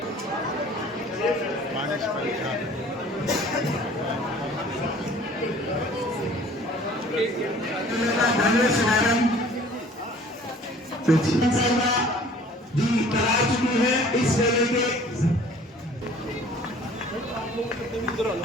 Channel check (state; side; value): normal; both; correlation 0.51